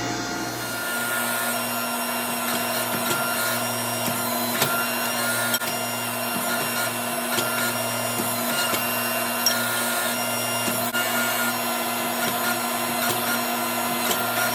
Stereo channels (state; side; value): identical; both; correlation 1.00